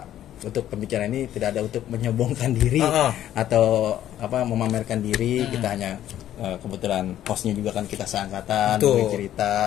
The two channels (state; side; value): quieter; right; 11.9 dB